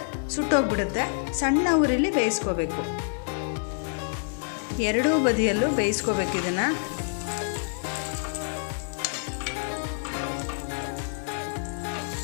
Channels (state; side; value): silent; right; digital silence